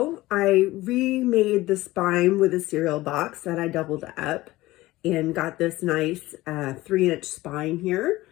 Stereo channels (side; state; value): right; quieter; 18.2 dB